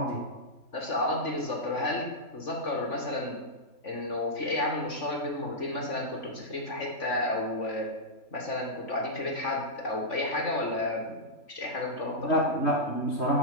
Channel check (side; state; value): right; late; 3.5 ms